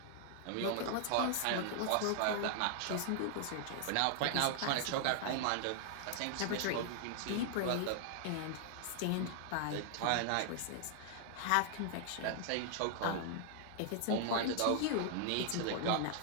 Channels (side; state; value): both; different; correlation 0.00